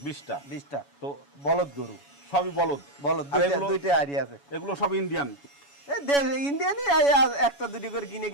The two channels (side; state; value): right; late; 7.1 ms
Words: 20টা। তো বলদ গরু, সবই বলদ। দুইটা আইডিয়া আছে। এগুলো সব ইন্ডিয়ান? ইন্ডিয়ানই, একটা দুটি করে কিনে